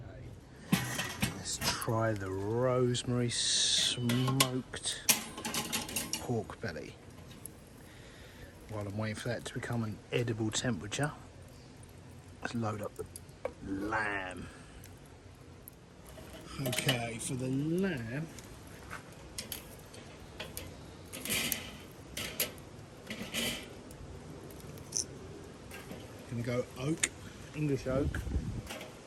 Okay. Let's try the rosemary smoked pork belly. While I'm waiting for that to become an edible temperature, let's load up the lamb. Okay, for the lamb, gonna go oak, English oak.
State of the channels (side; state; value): both; identical; correlation 1.00